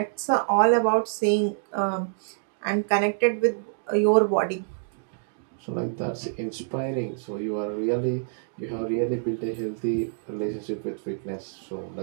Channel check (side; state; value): left; silent; digital silence